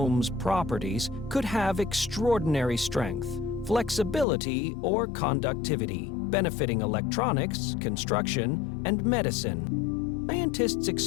properties could have extraordinary strength, flexibility, or conductivity, benefiting electronics, construction, and medicine. Scientists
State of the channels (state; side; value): drops out; right; at 4.2 s